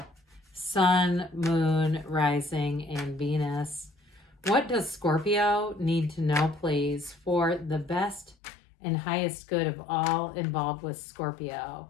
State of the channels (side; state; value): right; drops out; at 8.3 s